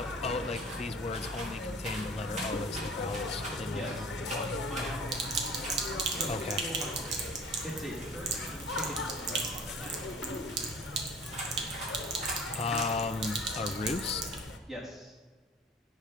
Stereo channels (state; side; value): normal; both; correlation 0.45